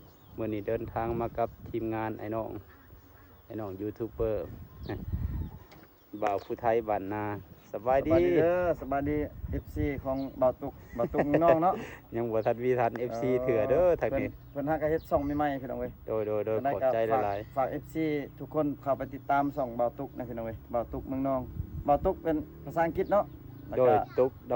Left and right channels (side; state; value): both; identical; correlation 1.00